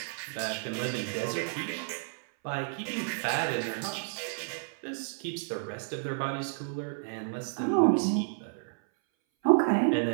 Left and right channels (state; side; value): silent; left; 57 dB below the other